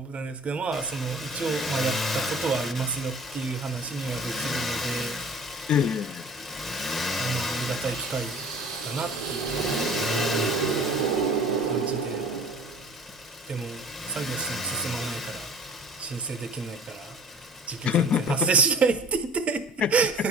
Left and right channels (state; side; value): normal; both; correlation 0.45